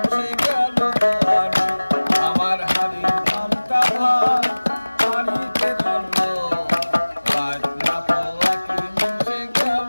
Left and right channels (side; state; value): both; inverted; correlation -1.00